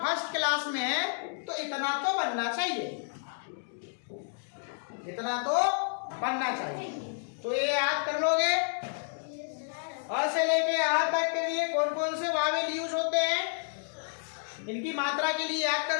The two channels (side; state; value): right; silent; digital silence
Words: फर्स्ट क्लास में है तो इतना तो बनना चाहिए, इतना तो बनना चाहिए। तो ये याद कर लोगे। अ से लेके आ तक के लिए कौन कौन से वावेल यूज होते हैं इनकी मात्रा के लिए याद कर